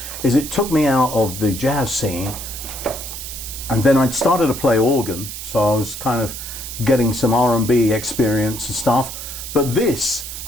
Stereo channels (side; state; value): right; noise; hiss, 9 dB below the sound